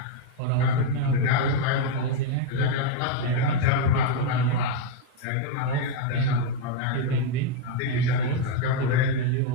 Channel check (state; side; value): different; both; correlation 0.01